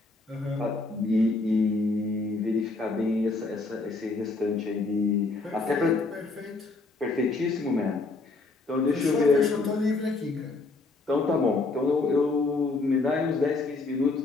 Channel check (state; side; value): quieter; right; 3.6 dB